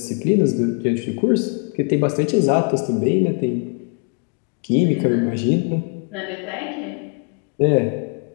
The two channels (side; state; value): right; quieter; 38.8 dB